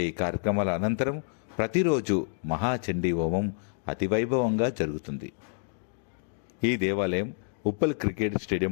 ఈ కార్యక్రమాల అనంతరం ప్రతిరోజు మహాచండీ హోమం అతివైభవంగా జరుగుతుంది. ఈ దేవాలయం ఉప్పల్ క్రికెట్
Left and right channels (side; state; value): right; silent; digital silence